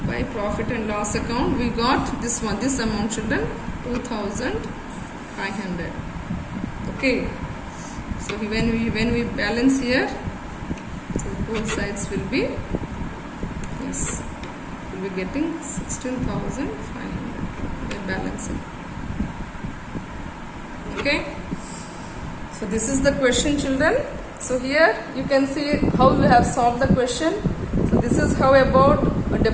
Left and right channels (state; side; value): identical; both; correlation 1.00